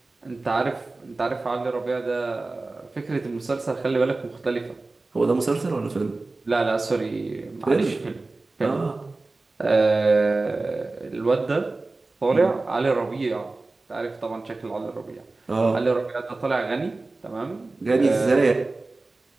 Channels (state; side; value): quieter; left; 3.3 dB